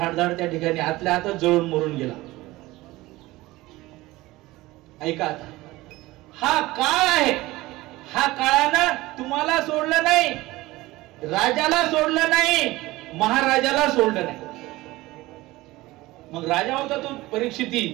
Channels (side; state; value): left; quieter; 19.1 dB